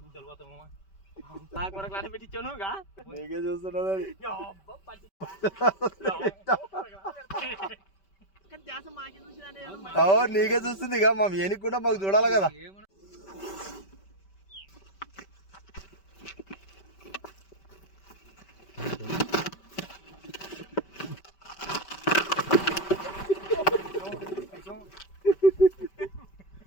నాకు కొరకు లాట పెట్టించాను నీకే చూస్తున్నది నీకే చూస్తుంది ఇక మా ఏనికి కూడా మాకు చూడాలి కదా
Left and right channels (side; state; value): right; late; 5.2 ms